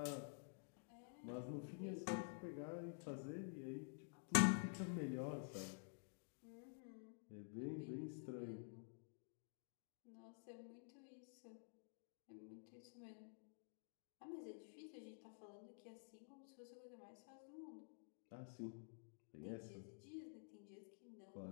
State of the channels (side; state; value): right; silent; digital silence